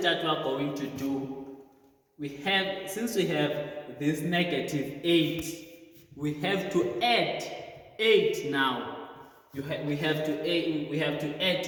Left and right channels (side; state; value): both; identical; correlation 1.00